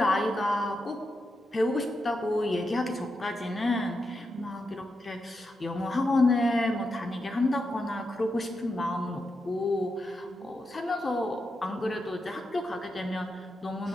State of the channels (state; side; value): normal; both; correlation 0.86